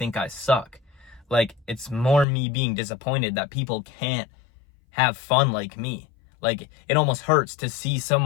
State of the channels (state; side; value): drops out; right; at 2.2 s